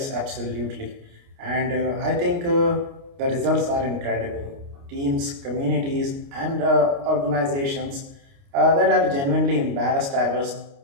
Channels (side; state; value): left; late; 29 ms